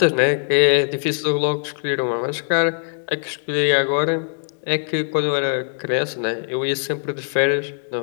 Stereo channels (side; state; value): right; silent; digital silence